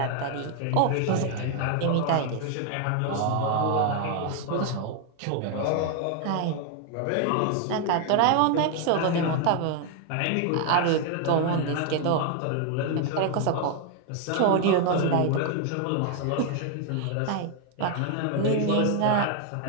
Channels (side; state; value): both; different; correlation 0.00